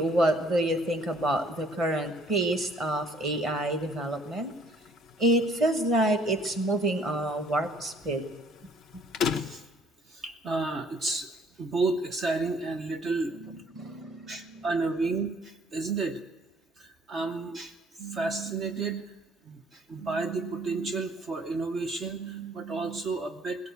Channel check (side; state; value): both; normal; correlation 0.59